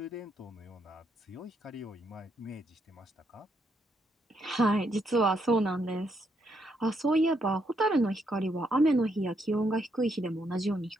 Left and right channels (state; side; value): normal; both; correlation 0.77